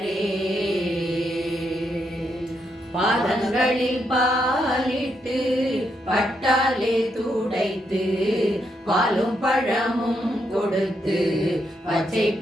பாதங்களில் பாலிட்டு பட்டாலே துடைத்து பாலும் பழமும் கொடுத்து பச்சை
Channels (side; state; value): both; normal; correlation 0.79